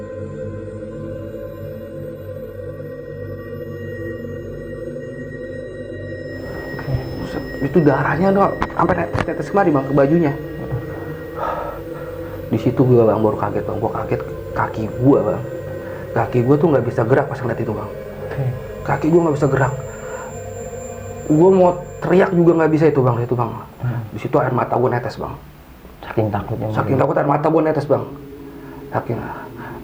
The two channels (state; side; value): identical; both; correlation 1.00